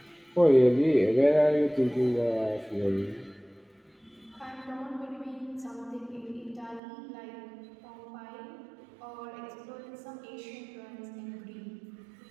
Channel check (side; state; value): left; drops out; at 6.8 s